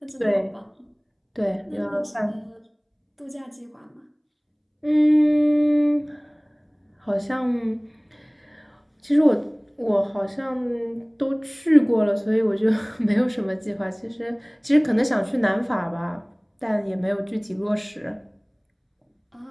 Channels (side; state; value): both; identical; correlation 1.00